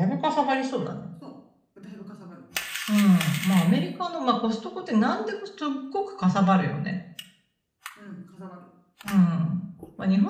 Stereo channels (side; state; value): both; identical; correlation 1.00